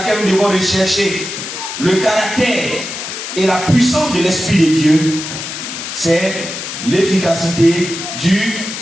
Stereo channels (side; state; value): left; noise; hiss, 7 dB below the sound